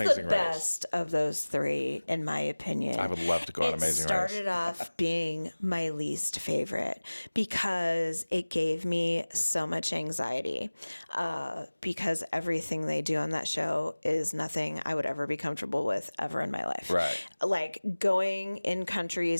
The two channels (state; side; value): inverted; both; correlation -1.00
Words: best of those three, in my opinion. I would love to go on Amazing Race. It started off being my least favorite because it gave me so much anxiety because everything they do on that show is nothing I would ever be comfortable with ever in my life. Right. Like going in